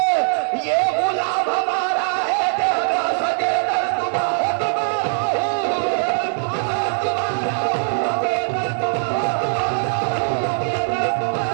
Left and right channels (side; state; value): left; silent; 56 dB below the other